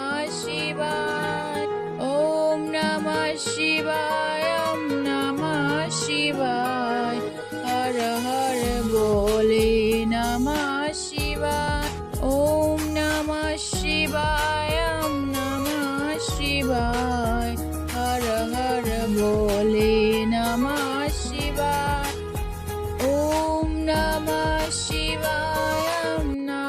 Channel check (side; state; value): both; identical; correlation 1.00